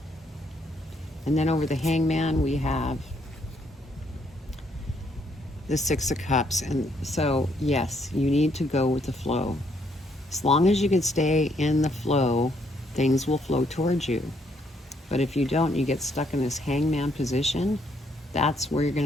And then over the Hangman, we have the 6 of Cups. And so, yes, you need to go with the flow. As long as you can stay in the flow, things will flow towards you. But if you don't, you get stuck in this Hangman position, that's where you're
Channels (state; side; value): normal; both; correlation 0.71